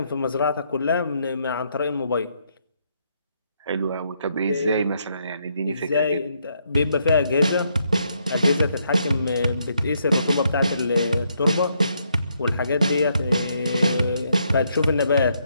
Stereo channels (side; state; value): both; inverted; correlation -0.75